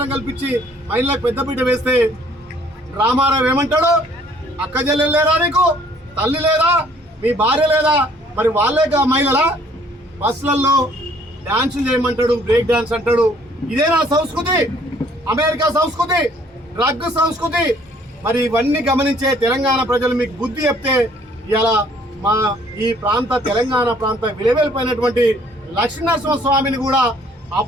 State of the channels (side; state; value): both; normal; correlation 0.60